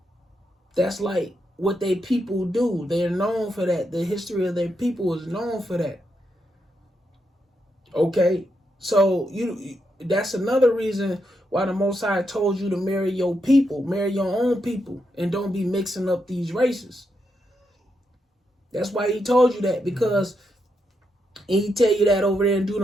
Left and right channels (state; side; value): normal; both; correlation 0.82